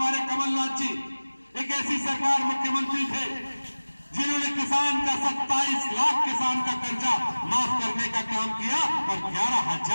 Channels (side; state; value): both; inverted; correlation -1.00